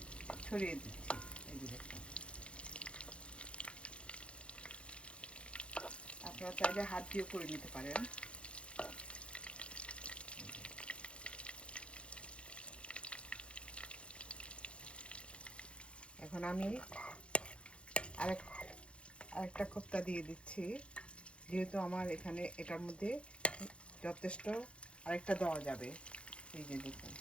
ছড়িয়ে দিচ্ছি। এই যে দেখুন, আপনারা চাইলে হাত দিয়েও করে নিতে পারেন। এখন আমি আরেকটা কোপ্তা দিয়ে দিচ্ছি, যেহেতু আমার এখানে এটার মধ্যে যথেষ্ট আরেকটা দেওয়া যাবে। এই যে দেখুন,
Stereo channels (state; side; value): late; right; 0.058 ms